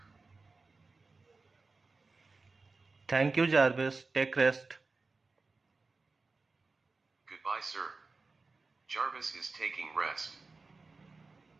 Thank you, Jarvis. Take rest. Goodbye, sir. Jarvis is taking rest.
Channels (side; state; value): left; quieter; 3.9 dB